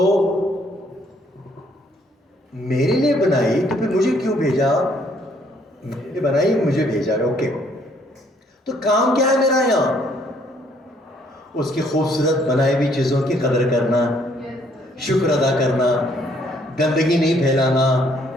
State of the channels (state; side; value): normal; both; correlation 0.65